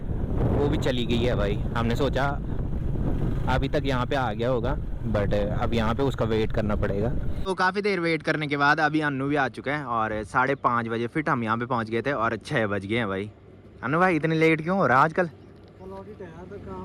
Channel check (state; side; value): identical; both; correlation 1.00